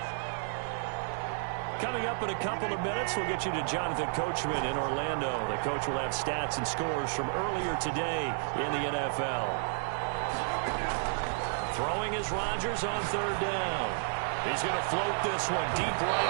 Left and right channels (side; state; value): left; silent; digital silence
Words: Coming up in a couple of minutes, we'll get you to Jonathan Coachman in Orlando. The coach will have stats and scores from earlier today in the NFL. Throwing is Rodgers on 3rd down. He's going to float this one deep